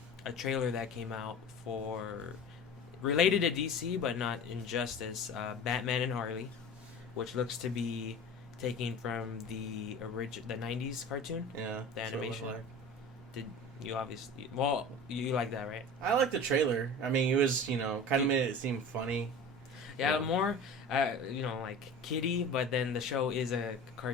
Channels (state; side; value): normal; both; correlation 0.37